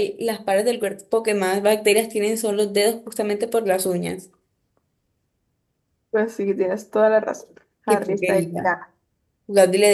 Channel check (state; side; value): identical; both; correlation 1.00